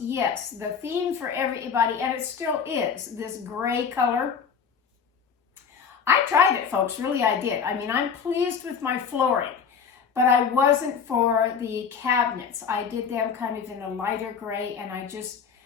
yes, the theme for everybody, and it still is, this gray color. I tried it, folks, really I did. I mean, I'm pleased with my flooring, but I wasn't for the cabinets. I did them kind of in a lighter gray, and I just,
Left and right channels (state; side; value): quieter; right; 6.5 dB